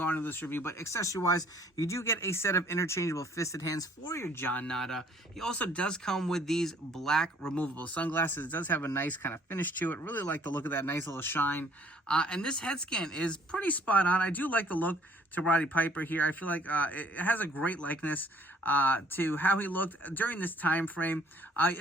on into this review. But accessory-wise, you do get a set of interchangeable fisted hands for your John Nada. He also does come with these black removable sunglasses. It does have a nice kind of finish to it. Really like the look of that nice little shine. And this head scan is pretty spot on. I do like the look to Roddy Piper here. I feel like it has a great likeness to how he looked during this time frame.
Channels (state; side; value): normal; both; correlation 0.60